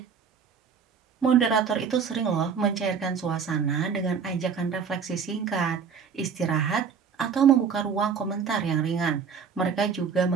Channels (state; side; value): quieter; left; 6.4 dB